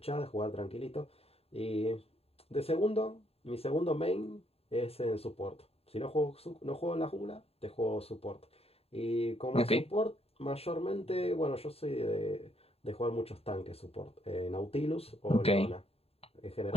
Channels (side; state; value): right; late; 0.29 ms